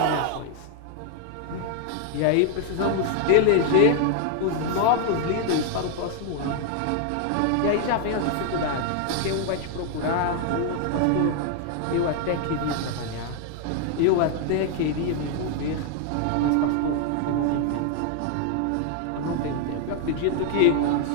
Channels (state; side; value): different; both; correlation 0.00